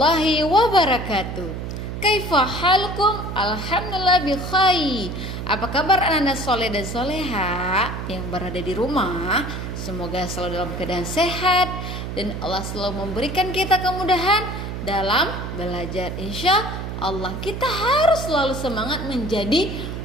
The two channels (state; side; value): noise; right; hum, 6 dB below the sound